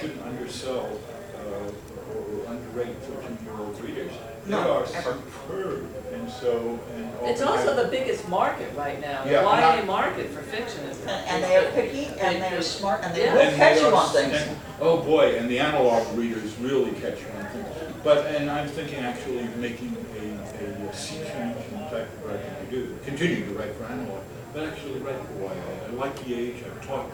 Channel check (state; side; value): identical; both; correlation 1.00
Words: undersell or underrate 13-year-old readers. They No, are ever. superb, and so It's also the biggest market right now. The Yeah, YA and market for fiction is. And they are picky, and they are smart, and they Yeah. will and catch they you are- on things. and- oh boy, and the analog readers really catch you on things. And I'm thinking actually of making a sea change in the type of writing I do. Continue to write for analog, but actually write for YA. I like the age, I've taught